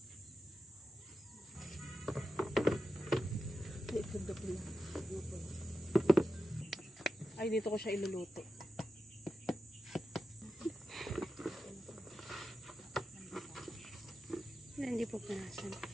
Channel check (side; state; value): both; normal; correlation 0.90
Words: Ay, dito ko siya iluluto. Hindi po punasan.